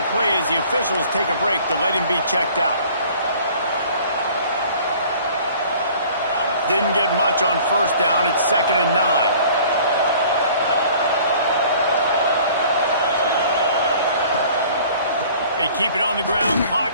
play as the officials take a break to let him be checked out. Didn't get much on first down. It's 2nd and 9. They keep it on the ground.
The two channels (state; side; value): inverted; both; correlation -0.51